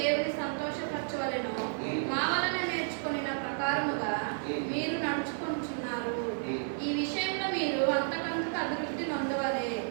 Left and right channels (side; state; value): left; silent; 57 dB below the other